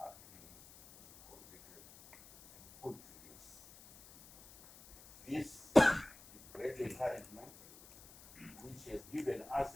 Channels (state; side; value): noise; left; hiss, 21 dB below the sound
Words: are being completed and put to use. This is great encouragement, which has given us